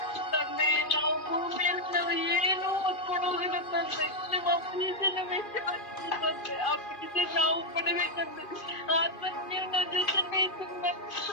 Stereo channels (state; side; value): late; right; 2.5 ms